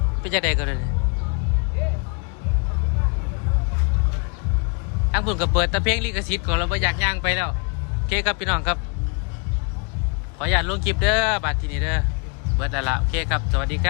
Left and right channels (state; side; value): quieter; right; 35.7 dB